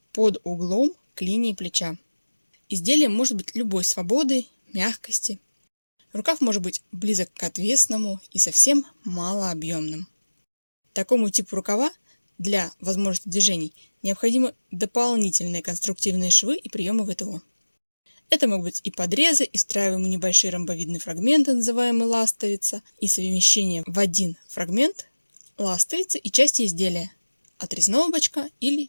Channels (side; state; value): both; inverted; correlation -1.00